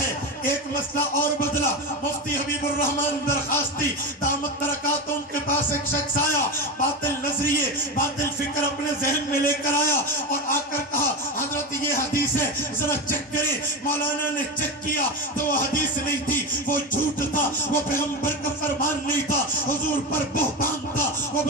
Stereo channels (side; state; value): both; normal; correlation 0.20